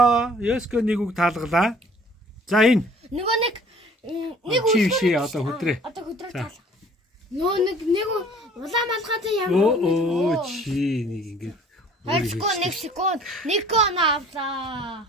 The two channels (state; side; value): normal; both; correlation 0.53